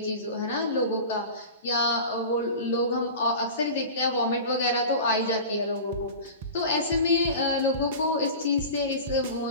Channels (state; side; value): inverted; both; correlation -0.34